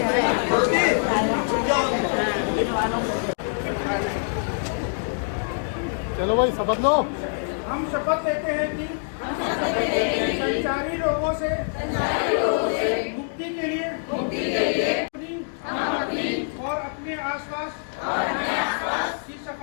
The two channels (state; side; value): silent; right; digital silence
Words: चलो भाई शपथ लो। हम शपथ लेते हैं कि संचारी रोगों से मुक्ति के लिए हम अपनी और अपने आसपास की